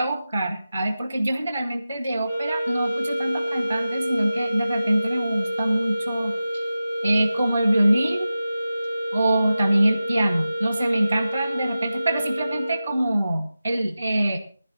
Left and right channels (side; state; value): both; inverted; correlation -0.93